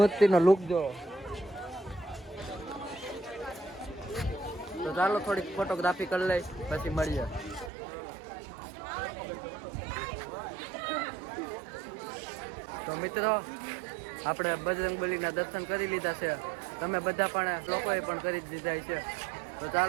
લુક જો. તો ચાલો થોડીક ફોટોગ્રાફી કરી લઈ પછી મળીએ. તો મિત્રો આપણે બજરંગબલીના દર્શન કરી લીધા છે. તમે બધા પણ લોકોએ પણ કરી જ દીધા છે. તો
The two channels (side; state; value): left; drops out; at 7.7 s